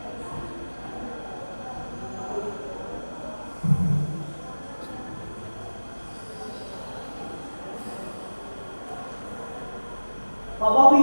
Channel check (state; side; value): inverted; both; correlation -1.00